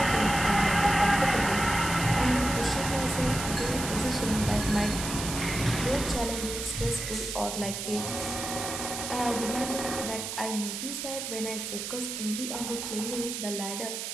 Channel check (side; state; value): right; noise; hiss, 5 dB below the sound